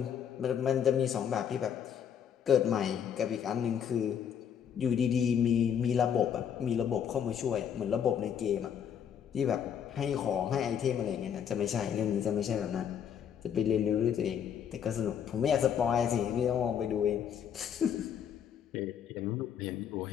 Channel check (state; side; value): quieter; right; 8.4 dB